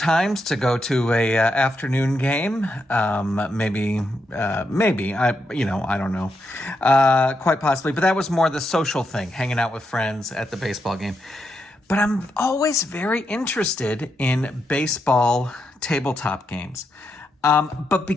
to go to a afternoon game. Maybe, I don't know, quite possibly, but that was more the social thing, hanging out with friends at the baseball game. But I'm always very interested in baseball tabletop games. But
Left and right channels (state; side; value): normal; both; correlation 0.83